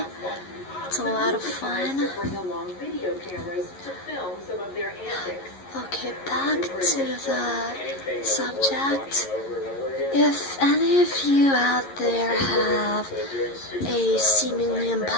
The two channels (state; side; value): late; right; 11 ms